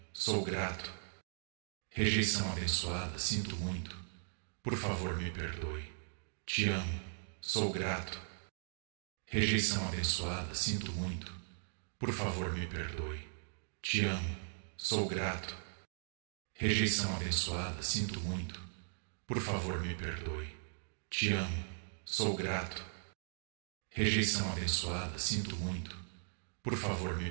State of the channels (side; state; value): left; silent; 52 dB below the other